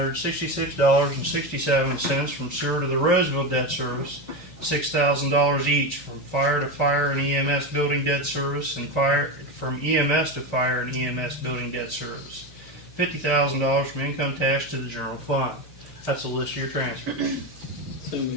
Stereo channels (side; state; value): both; normal; correlation 0.17